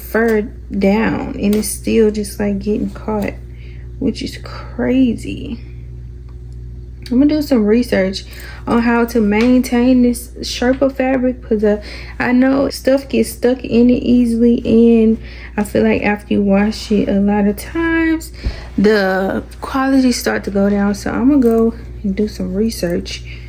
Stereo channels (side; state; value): both; identical; correlation 1.00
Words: down, and it's still just like getting caught, which is crazy. I'm gonna do some research on how to maintain this Sherpa fabric, because I know stuff gets stuck in it easily, and I feel like after you wash it a lot of times the quality start to go down. So I'm gonna go and do some research